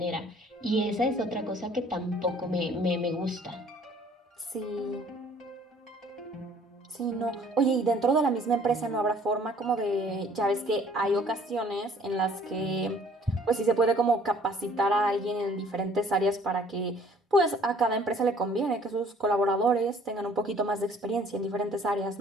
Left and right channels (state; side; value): normal; both; correlation 0.56